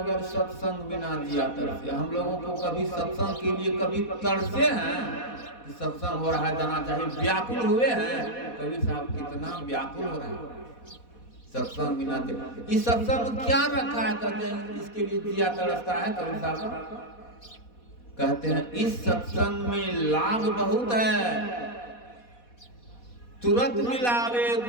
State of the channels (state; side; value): late; right; 4.1 ms